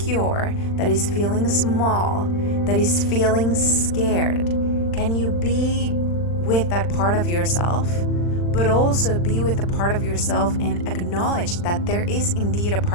that is feeling small, that is feeling scared? Can you be with that part of yourself, but also be with the part of yourself and acknowledge that there is indeed a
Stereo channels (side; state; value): right; late; 40 ms